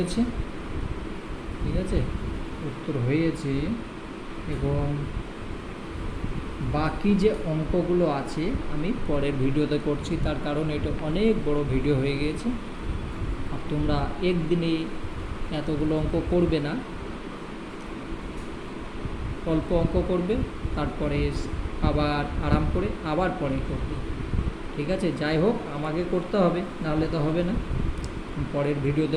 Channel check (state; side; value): identical; both; correlation 1.00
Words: ঠিক আছে, উত্তর হয়েছে। এবং বাকি যে অঙ্কগুলো আছে আমি পরের ভিডিওতে করছি, তার কারণ এটা অনেক বড় ভিডিও হয়ে গিয়েছে। আর তোমরা একদিনে এতগুলো অঙ্ক করবে না, অল্প অঙ্ক করবে, তারপরে আবার আরাম করে আবার পরে করবে, ঠিক আছে। যাই হোক, আমাকে করতে হবে, নাহলে তো হবে না। পরের